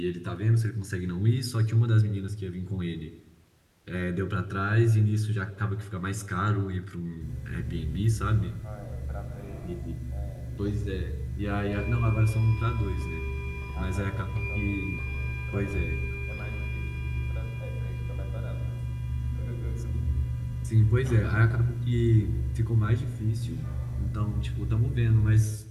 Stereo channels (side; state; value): both; identical; correlation 1.00